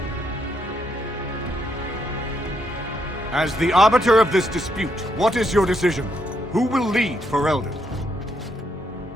As the arbiter of this dispute, what is your decision? Who will lead Ferelden?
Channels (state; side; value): normal; both; correlation 0.77